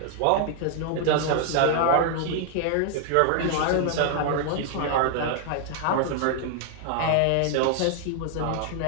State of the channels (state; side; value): different; both; correlation 0.00